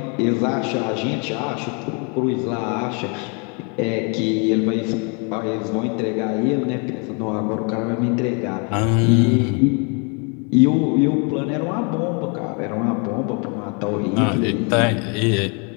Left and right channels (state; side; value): quieter; right; 35.6 dB